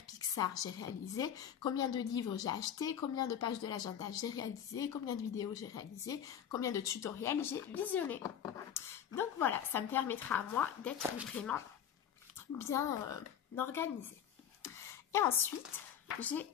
Pixar j'ai réalisé? Combien de livres j'ai acheté? Combien de pages de l'agenda j'ai réalisé? Combien de vidéos j'ai réalisé? Combien de tutoriels j'ai visionné? Donc voilà, ça me permettra à moi d'être vraiment bien organisée. Et ensuite, j'ai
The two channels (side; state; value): right; quieter; 9.2 dB